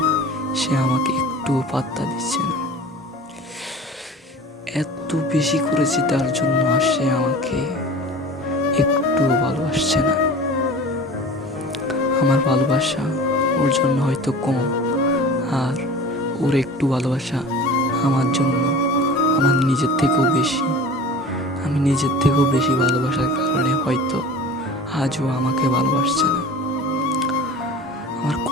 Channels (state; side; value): normal; both; correlation 0.39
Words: সে আমাকে একটুও পাত্তা দিচ্ছে না। এত বেশি করেছি তার জন্য, আর সে আমাকে একটুও ভালোবাসছে না। আমার ভালোবাসা ওর জন্য হয়তো কম, আর ওর একটু ভালোবাসা আমার জন্য আমার নিজের থেকেও বেশি। আমি নিজের থেকেও বেশি ভালোবাসার কারণে হয়তো আজও আমাকে ভালোবাসছে না। আমার